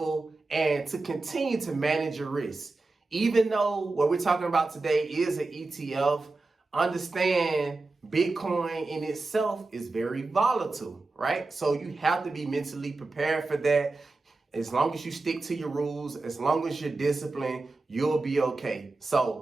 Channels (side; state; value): left; quieter; 3.5 dB